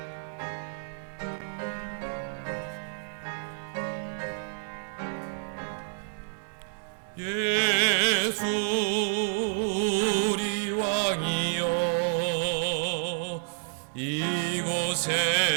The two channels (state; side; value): silent; left; digital silence